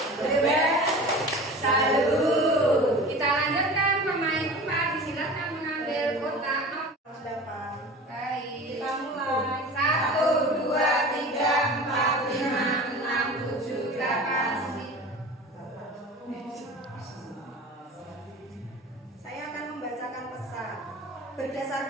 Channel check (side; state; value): both; normal; correlation 0.37